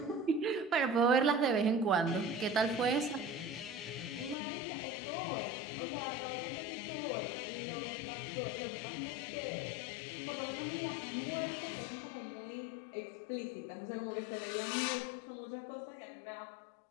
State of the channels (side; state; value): right; drops out; at 4.4 s